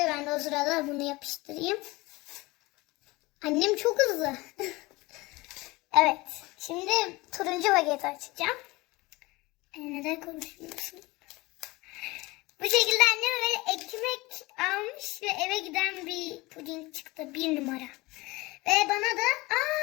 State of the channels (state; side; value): quieter; right; 22.0 dB